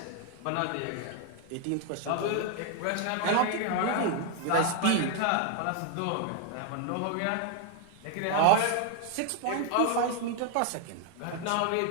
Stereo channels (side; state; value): both; different; correlation 0.00